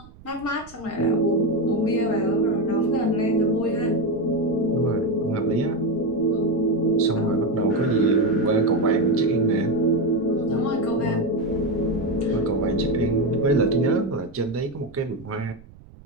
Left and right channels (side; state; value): right; noise; rumble, 22 dB below the sound